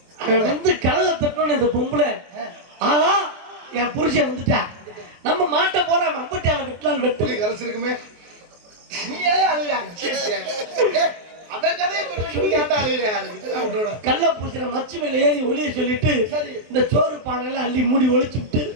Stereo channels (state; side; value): late; left; 23 ms